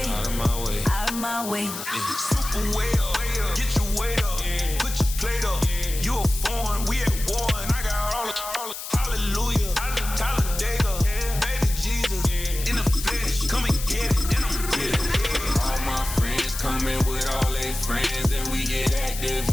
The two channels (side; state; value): left; noise; hiss, 8 dB below the sound